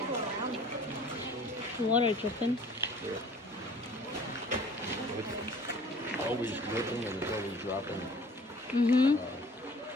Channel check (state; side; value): normal; both; correlation 0.50